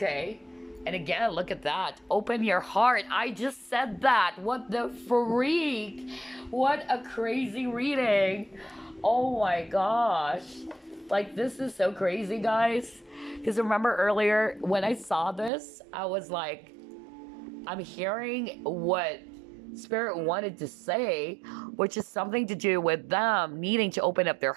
And again, look at that. Open your heart. I just said that. What the freak? What a crazy reading. Oh my gosh. Like, this is so crazy, guys. Because remember earlier when I saw this, I was like, I'm hearing what Spirit wanted to say, which is something to do with them needing to open up their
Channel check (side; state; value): left; drops out; at 15.5 s